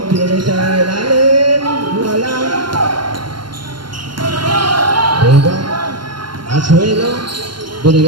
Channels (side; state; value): left; late; 0.72 ms